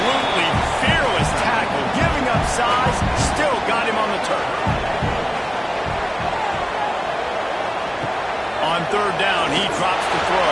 fearless tackle. Giving up size, still got him on the turf. On 3rd down, he drops the throw.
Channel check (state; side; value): identical; both; correlation 1.00